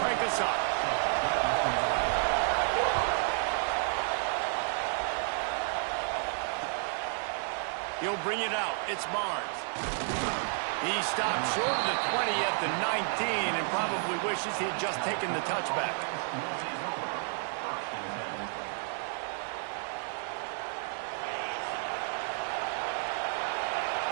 crank us up. He'll bring it out. It's Barnes. He stopped short of the 20 at the 19 and probably wishes he had just taken the touchback.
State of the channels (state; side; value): silent; left; 57 dB below the other